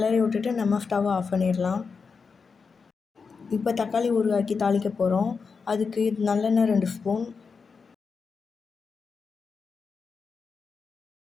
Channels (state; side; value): quieter; right; 5.2 dB